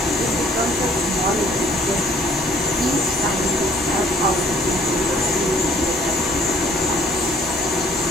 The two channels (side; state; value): both; normal; correlation 0.58